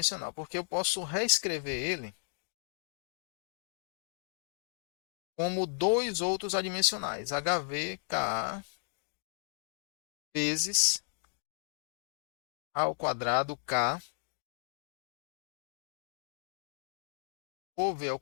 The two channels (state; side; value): silent; right; digital silence